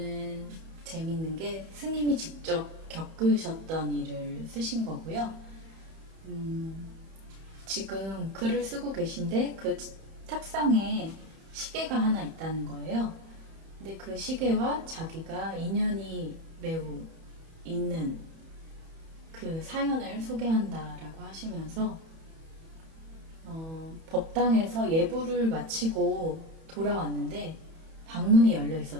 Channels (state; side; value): late; left; 31 ms